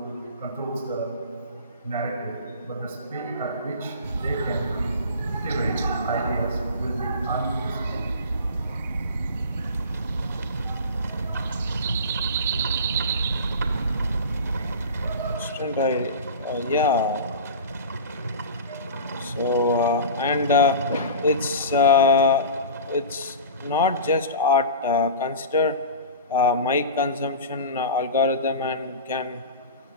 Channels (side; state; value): both; inverted; correlation -0.32